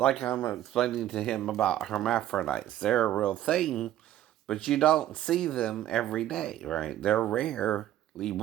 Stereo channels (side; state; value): left; quieter; 12.7 dB